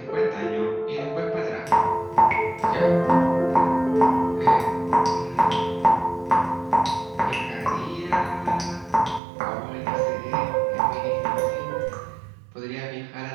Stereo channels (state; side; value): drops out; left; at 9.2 s